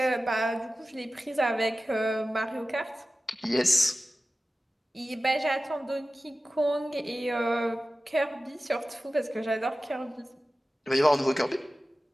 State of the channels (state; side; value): normal; both; correlation 0.95